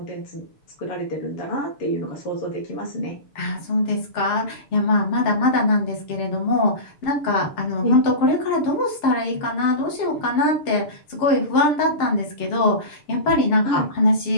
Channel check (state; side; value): late; right; 6.8 ms